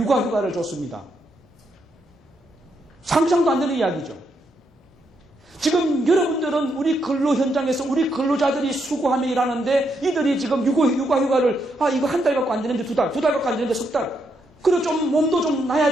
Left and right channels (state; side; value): normal; both; correlation 0.79